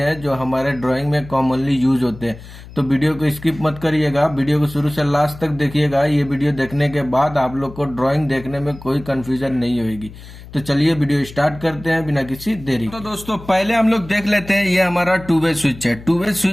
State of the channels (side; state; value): left; noise; hum, 17 dB below the sound